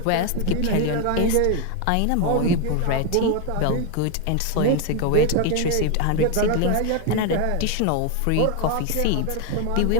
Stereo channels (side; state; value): both; different; correlation 0.01